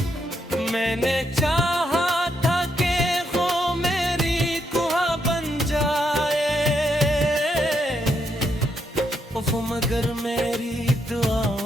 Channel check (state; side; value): normal; both; correlation 0.78